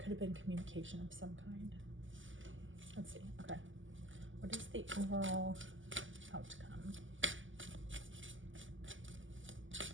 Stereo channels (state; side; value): late; left; 0.56 ms